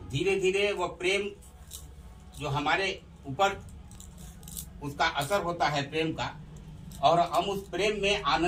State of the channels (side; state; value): both; identical; correlation 1.00